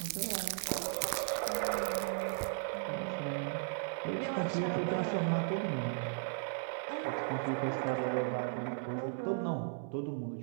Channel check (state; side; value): silent; left; digital silence